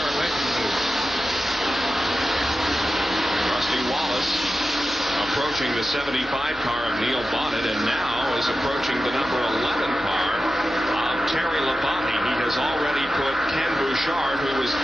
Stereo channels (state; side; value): normal; both; correlation 0.93